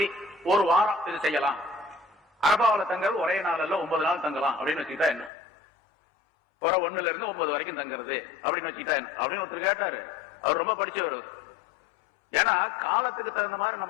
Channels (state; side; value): drops out; right; at 5.3 s